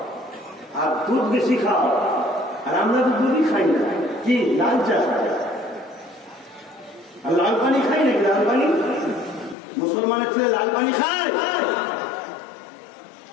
আর দুধ বেশি খাও। আর আমরা তো দুধই খাই না, কি লাল চা খাই আর লাল পানি খাই নাকি? লাল পানি মুসলমানের ছেলে লাল পানি খায়?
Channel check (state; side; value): drops out; right; at 9.6 s